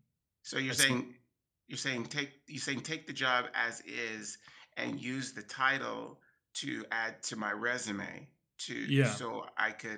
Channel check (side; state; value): both; identical; correlation 1.00